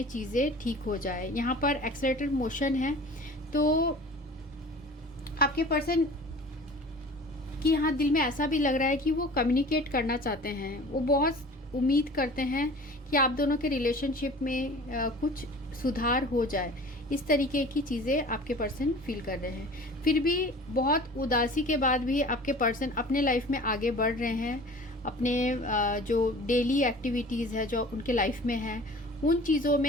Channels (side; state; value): both; normal; correlation 0.43